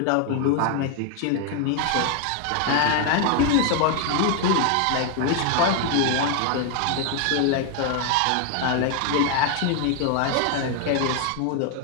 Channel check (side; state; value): both; different; correlation 0.01